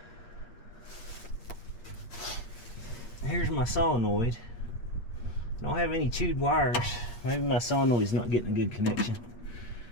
Here's my solenoid. I don't have any chewed wires. Maybe my solenoid's not getting a good connection.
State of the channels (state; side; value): late; right; 8.6 ms